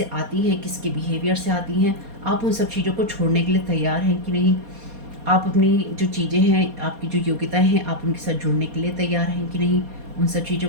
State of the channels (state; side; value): late; left; 4.2 ms